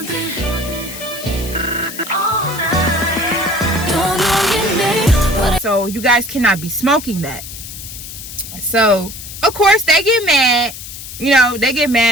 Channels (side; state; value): left; noise; hiss, 11 dB below the sound